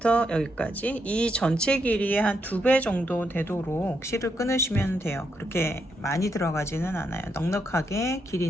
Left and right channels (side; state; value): both; normal; correlation 0.80